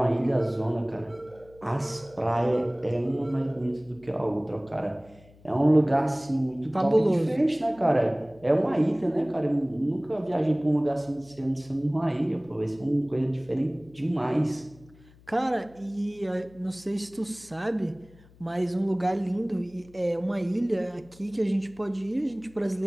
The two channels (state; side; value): noise; left; hum, 26 dB below the sound